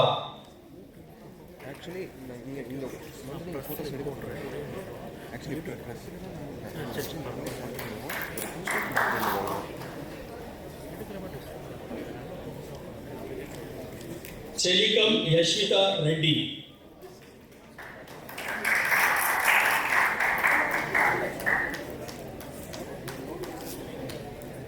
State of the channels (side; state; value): both; identical; correlation 1.00